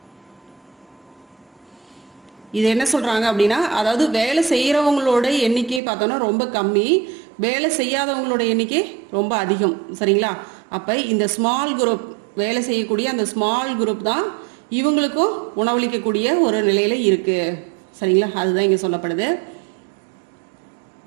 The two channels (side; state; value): left; drops out; at 5.8 s